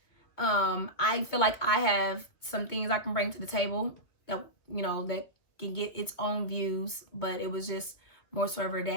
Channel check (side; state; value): right; late; 2.5 ms